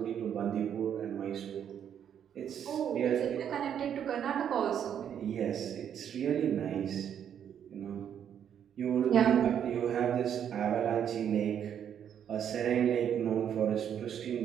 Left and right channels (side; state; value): left; quieter; 9.0 dB